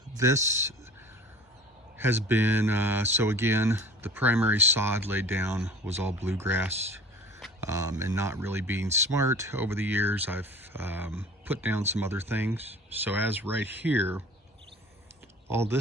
This has been, so again, the primary sod laid down was all bluegrass, and not really being smart over the years, I've put down some other things. So as right here, all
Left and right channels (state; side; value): normal; both; correlation 0.43